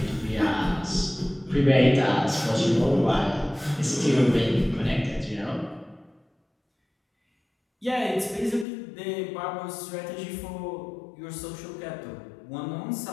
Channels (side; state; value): right; drops out; at 8.7 s